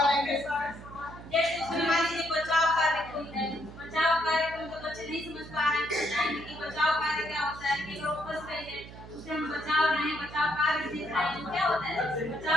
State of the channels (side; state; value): right; noise; hum, 15 dB below the sound